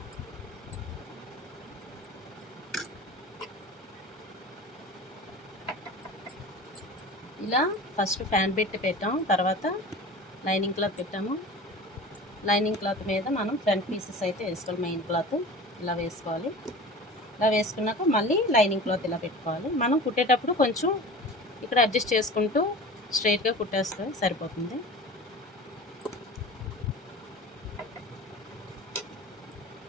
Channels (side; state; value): both; normal; correlation 0.37